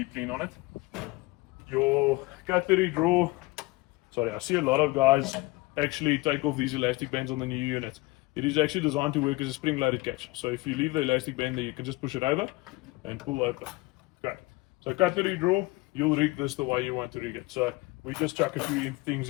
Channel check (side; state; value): right; quieter; 22.6 dB